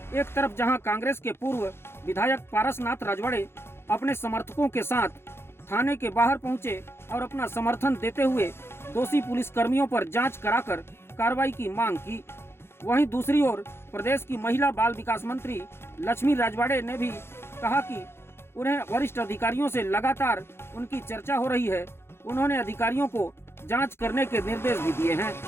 एक तरफ जहां कांग्रेस के पूर्व विधायक पारसनाथ राजवाड़े अपने समर्थकों के साथ थाने के बाहर पहुंचे और अपना समर्थन देते हुए दोषी पुलिस कर्मियों पर जांच कराकर कार्रवाई की मांग की, वहीं दूसरी ओर प्रदेश की महिला बाल विकास मंत्री लक्ष्मी राजवाड़े ने भी कहा कि उन्हें वरिष्ठ अधिकारियों से लगातार उनकी चर्चा हो रही है। उन्होंने अधिकारियों को जांच करने के निर्देश भी दिए हैं,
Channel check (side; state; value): right; late; 0.12 ms